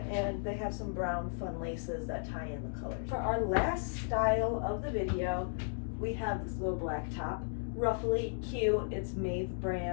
and they have some brown fun laces that tie in the colors. For our last style of the video, we have this little black top. Ruffly, cute, it's Maeve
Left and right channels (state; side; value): silent; right; digital silence